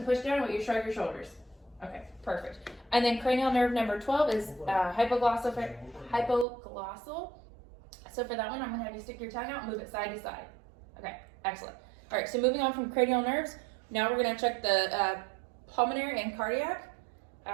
push down while you shrug your shoulders. Okay, perfect. And then cranial nerve number 12 is hypoglossal. So for that one, I'm going to have you stick your tongue out and move it side to side. Okay, excellent. All right, so moving on from cranial nerves, now we're going to check the pulmonary and cardiac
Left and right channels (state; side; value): drops out; left; at 6.5 s